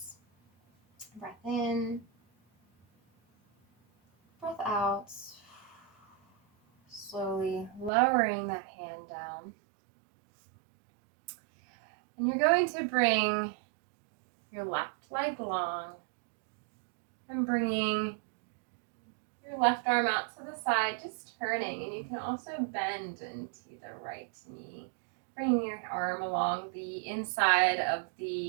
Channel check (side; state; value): left; drops out; at 7.9 s